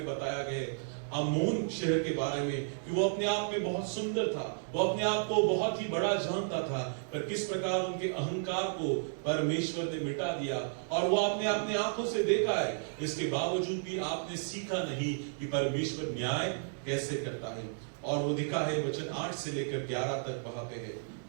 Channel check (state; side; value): silent; left; digital silence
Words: बताया गया है. अमोन शहर के बारे में कि वो अपने आप में बहुत सुंदर था, वो अपने आप को बहुत ही बड़ा जानता था, पर किस प्रकार उनके अहंकार को परमेश्वर ने मिटा दिया. और वो आपने अपने आंखों से देखा है, इसके बावजूद भी आपने सीखा नहीं कि परमेश्वर न्याय कैसे करता है. और वो दिखा है वचन 8 से लेकर 11 तक वहां पे है.